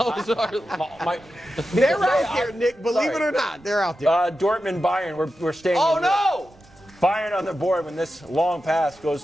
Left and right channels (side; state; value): right; noise; rumble, 27 dB below the sound